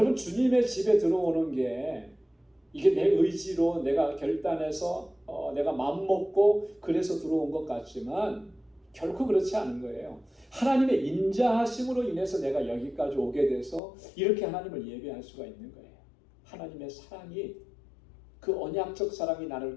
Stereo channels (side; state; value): right; drops out; at 13.8 s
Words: 주님의 집에 들어오는 게 이게 내 의지로 내가 결단해서 내가 마음먹고 그래서 들어온 것 같지만 결코 그렇지 않은 거예요. 하나님의 인자하심으로 인해서 내가 여기까지 오게 돼서 이렇게 하나님을 예배할 수가 있는 거예요. 하나님의 사랑이, 그 언약적 사랑이